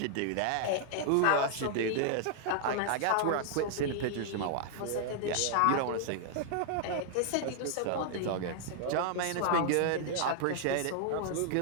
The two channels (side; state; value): both; different; correlation -0.01